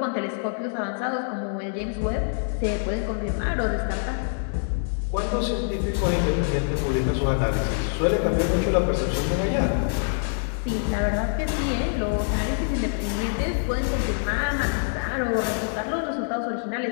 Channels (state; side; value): silent; right; digital silence